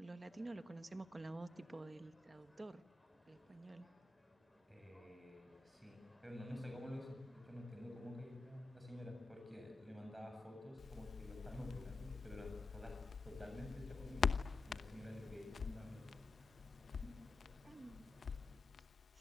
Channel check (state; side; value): quieter; right; 3.5 dB